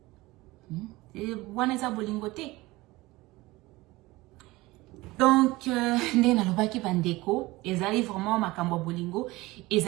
Et waneza bolingote. Donc ndé na lobaki bandeko ezali vraiment makambo bolingo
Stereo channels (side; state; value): left; quieter; 20.3 dB